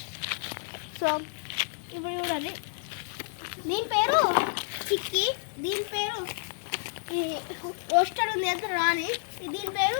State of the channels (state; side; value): silent; right; 58 dB below the other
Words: సో ఇప్పుడు చూడండి, దీని పేరు చిక్కి, దీని పేరు రోస్టర్ ఉంది ఎంత రాని, దీని